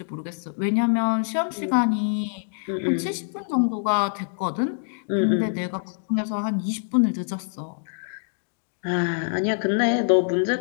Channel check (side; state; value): right; silent; digital silence